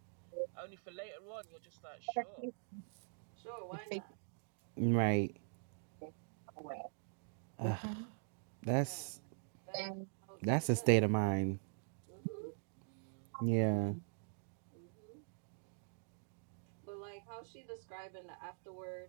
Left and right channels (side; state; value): left; silent; digital silence